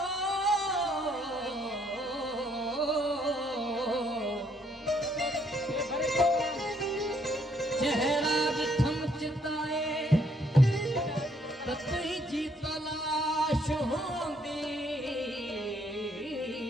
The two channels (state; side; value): normal; both; correlation 0.68